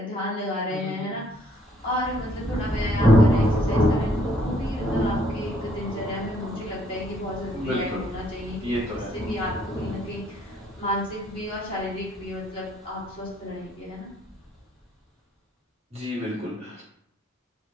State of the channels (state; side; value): normal; both; correlation 0.66